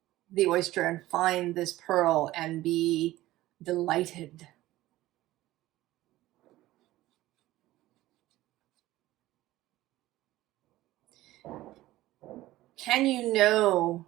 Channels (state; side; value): quieter; left; 16.4 dB